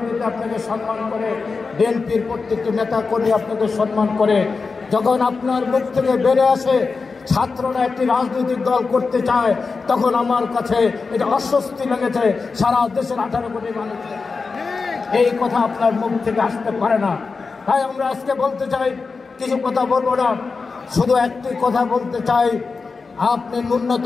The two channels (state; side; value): quieter; right; 4.5 dB